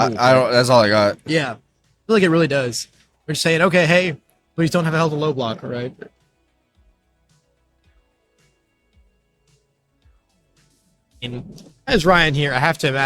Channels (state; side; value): identical; both; correlation 1.00